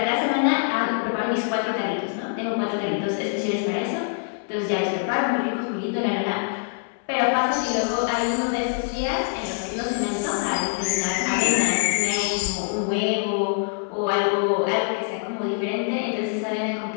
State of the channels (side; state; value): right; silent; 62 dB below the other